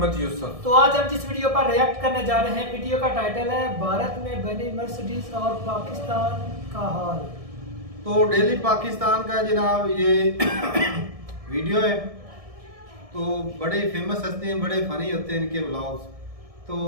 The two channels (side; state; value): left; late; 1.6 ms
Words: यूसुफ। तो आज हम जिस वीडियो पर रिएक्ट करने जा रहे हैं, वीडियो का टाइटल है भारत में बनी मर्सिडीज और पाकिस्तान का हाल। तो डेली पाकिस्तान का जनाब ये वीडियो है। तो बड़े फेमस हस्ती हैं, बड़े फनी होते हैं इनके व्लॉग्स। तो